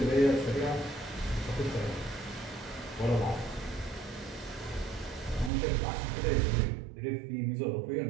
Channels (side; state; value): left; drops out; at 5.5 s